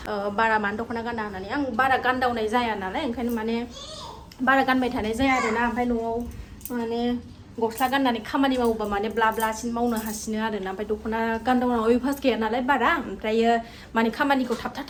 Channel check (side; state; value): both; identical; correlation 1.00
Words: बारा मानो दख'ना गाना होननानै आं बारा गानदावनाय जाया नालाय ओंखायनो माने बारा गानबाय थानाय जाया आरोना ओमफ्राय न'आव माने गस्ला गाननानै खामानि मावोबा माने ब्ला ब्लासिन मावनो हासिनो आरोना ओमफ्राय दख'ना गानदावनायाव अयभास गैया नालाय बारा ओमफ्रायो माने खामानिखौ